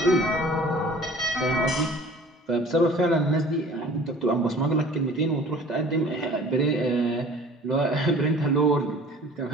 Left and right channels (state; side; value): normal; both; correlation 0.47